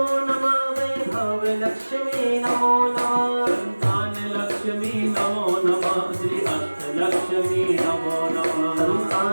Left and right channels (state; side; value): inverted; both; correlation -1.00